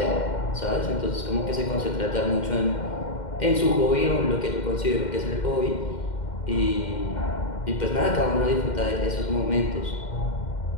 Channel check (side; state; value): right; late; 2.1 ms